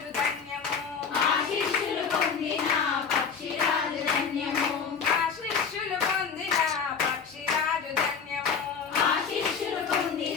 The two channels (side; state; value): right; quieter; 6.2 dB